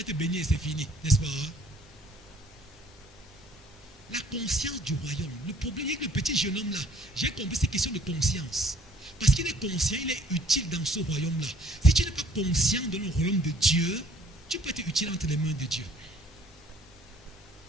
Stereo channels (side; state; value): both; normal; correlation 0.59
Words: être béni et c'est fini, n'est-ce pas? La conscience du royaume. Le problème est que le petit jeune homme là, j'ai compris ces questions de conscience. Parce qu'il est conscient, il est utile dans ce royaume-là. Si tu n'es pas conscient de le royaume de Dieu, tu peux être utile entre les mains de Dieu.